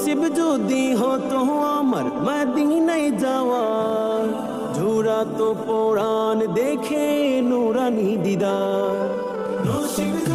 যদি হতো আমার মদিনায় যাওয়া, ঝুরাতো পরাণ দেখে নুরানি দিদার। নসিব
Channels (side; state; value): both; identical; correlation 1.00